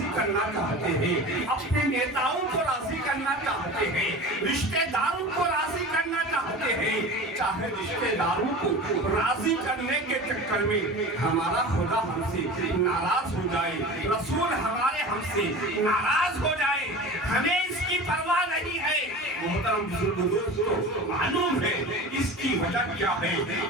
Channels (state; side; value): normal; both; correlation 0.34